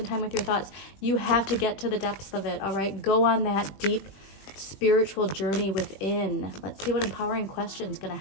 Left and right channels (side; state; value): right; late; 21 ms